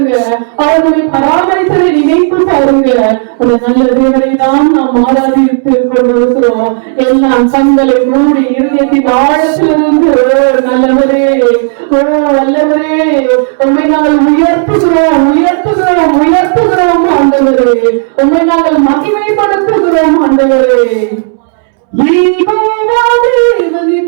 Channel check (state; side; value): silent; left; 68 dB below the other